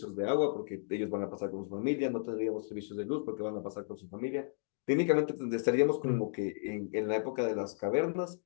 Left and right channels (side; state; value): right; silent; digital silence